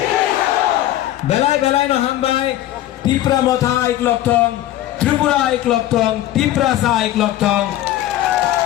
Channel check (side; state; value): right; quieter; 13.6 dB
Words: বেলাই বেলাই নহন বাই ত্রিপুরা মথা একলগ থং ত্রিপুরা একলগ থং ত্রিপুরা সা একলগ থং